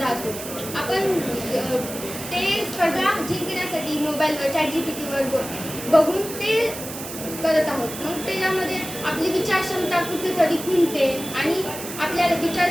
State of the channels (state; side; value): noise; right; hiss, 10 dB below the sound